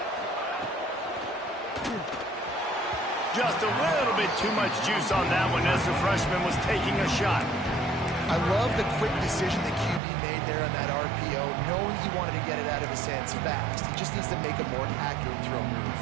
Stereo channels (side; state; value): left; drops out; at 10.0 s